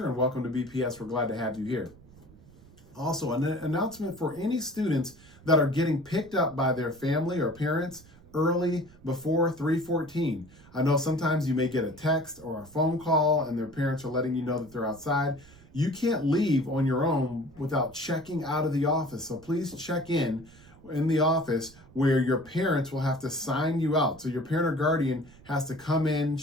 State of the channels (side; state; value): right; noise; rumble, 23 dB below the sound